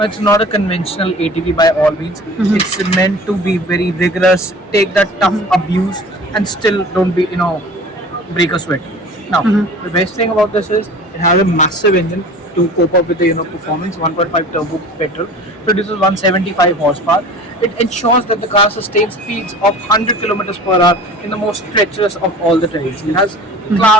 it's not a conventional ATV by all means. It's meant to be very rigorous, take that tough abuse, and still don't break a sweat. Now, the best thing about this is it has a massive engine, to cope up with the performance. 1.5 turbo petrol produces 175 horsepower. It ensures that the car sustains speeds of 100 kilometers per hour in the most treacherous of all the terrains. It has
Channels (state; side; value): normal; both; correlation 0.42